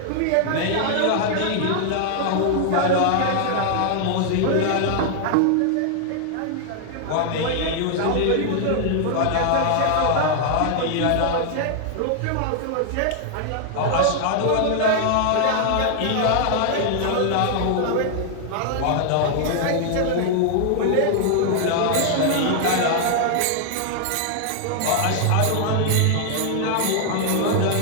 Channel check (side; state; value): both; different; correlation 0.00